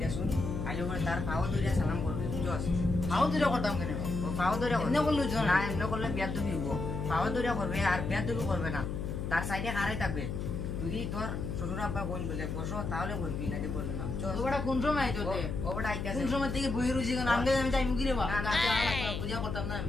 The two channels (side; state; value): left; noise; hum, 4 dB below the sound